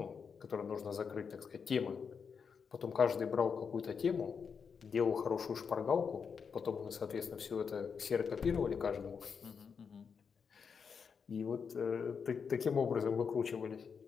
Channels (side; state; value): right; quieter; 6.2 dB